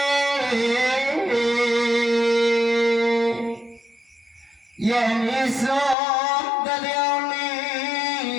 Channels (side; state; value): right; drops out; at 6.0 s